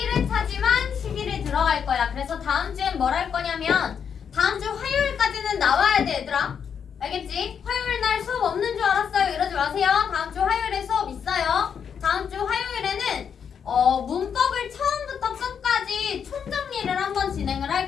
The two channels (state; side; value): quieter; right; 7.4 dB